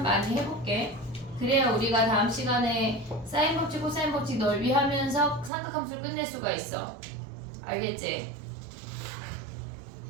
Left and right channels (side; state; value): left; drops out; at 5.5 s